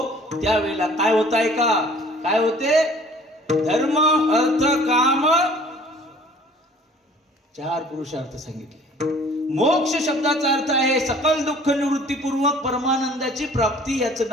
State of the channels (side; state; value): both; normal; correlation 0.52